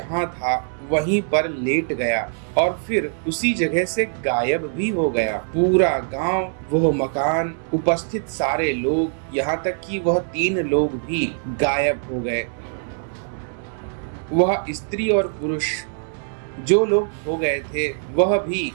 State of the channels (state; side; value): silent; left; digital silence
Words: था वहीं पर लेट गया और फिर उसी जगह से गायब भी हो गया। पूरा गांव, वह मकान, उपस्थित सारे लोग, यहाँ तक कि वह 3 लोग भी गायब हो गए। वह स्त्री और पुरुष जो लोग हो गए थे वह भी